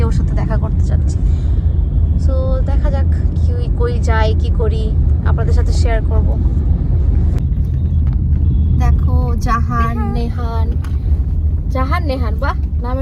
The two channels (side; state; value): both; identical; correlation 1.00